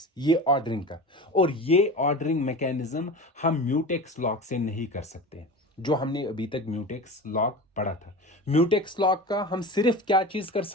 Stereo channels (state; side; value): normal; both; correlation 0.31